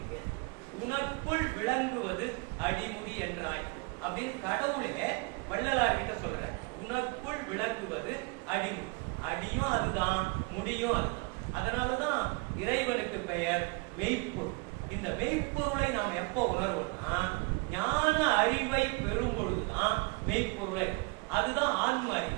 உனக்குள் விளங்குவது அடிமுடி என்றாய் அப்படின்னு கடவுளே வள்ளலார் கிட்ட சொல்றார். உனக்குள் விளங்குவது அடிமுடி. அடியும் அதுதான், முடியும் அதுதான். அதனாலதான் இறைவனுக்கு பெயர் மெய்ப்பொருள். இந்த மெய்ப்பொருளை நாம் எப்போ உணர்வோம்னா ஞான அறிவை பெறும் பொழுதுதான் மெய்ப்பொருளை. அதுதான் ஆன்ம அறிவு.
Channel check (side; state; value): left; quieter; 28.8 dB